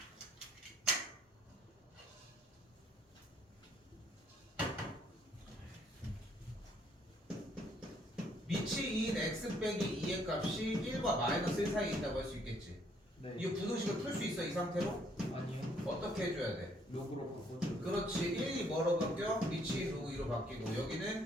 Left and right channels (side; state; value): both; normal; correlation 0.66